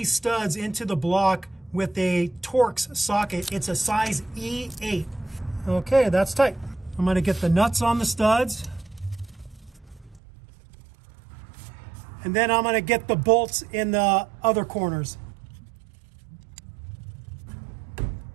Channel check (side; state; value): left; drops out; at 10.2 s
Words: studs into the block with a Torx socket. It's a size E8. Okay, that's tight. I'm going to get the nuts on the studs. And then I'm going to get the bolts in the other corners.